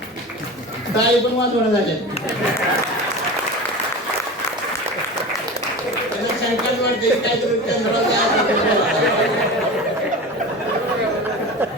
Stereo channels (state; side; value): normal; both; correlation 0.31